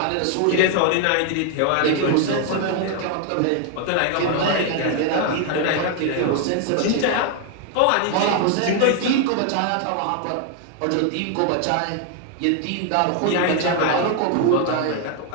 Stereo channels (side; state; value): both; different; correlation 0.00